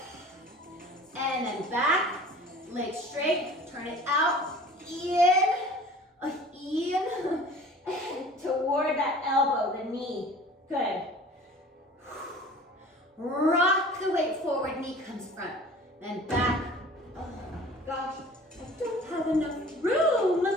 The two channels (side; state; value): both; normal; correlation 0.45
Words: and then back, legs straight, turn it out, in,